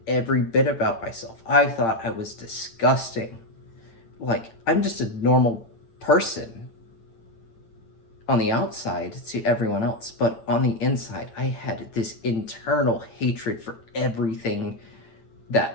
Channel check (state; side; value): late; right; 8.8 ms